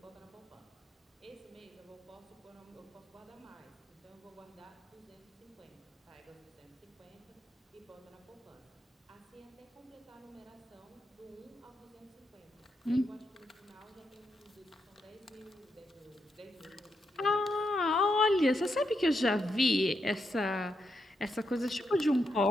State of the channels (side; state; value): both; normal; correlation 0.82